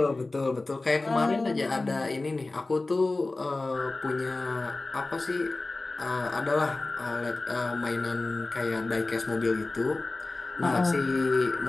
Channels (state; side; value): quieter; right; 3.2 dB